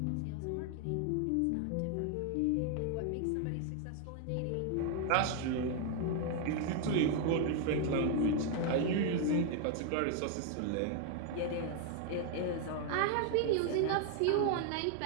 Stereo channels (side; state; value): both; different; correlation 0.00